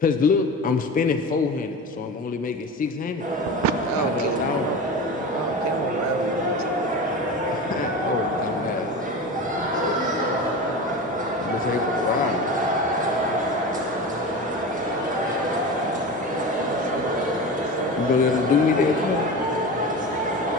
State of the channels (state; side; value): normal; both; correlation 0.29